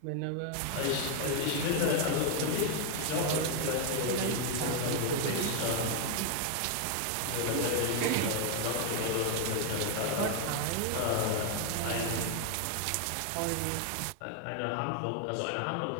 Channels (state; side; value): different; both; correlation 0.01